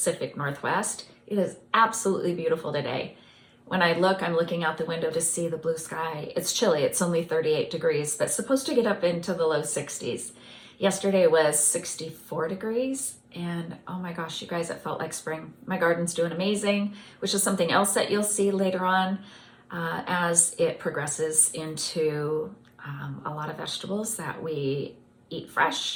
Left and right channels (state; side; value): identical; both; correlation 1.00